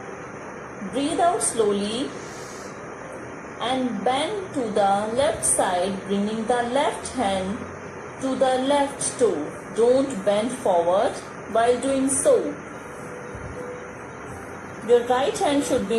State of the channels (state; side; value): identical; both; correlation 1.00